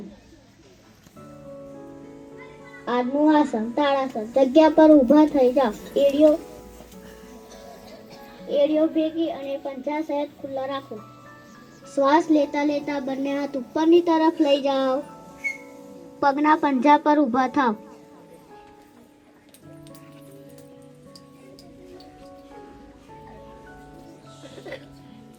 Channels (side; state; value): both; identical; correlation 1.00